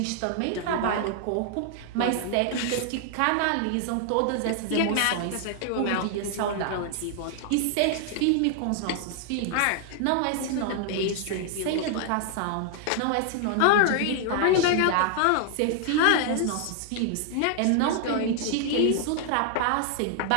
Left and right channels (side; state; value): both; different; correlation 0.00